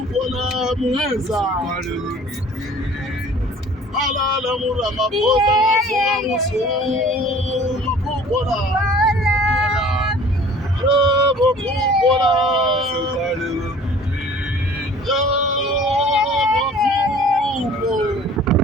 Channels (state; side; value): normal; both; correlation 0.49